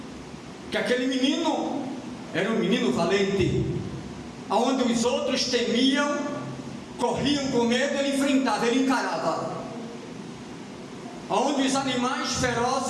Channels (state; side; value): identical; both; correlation 1.00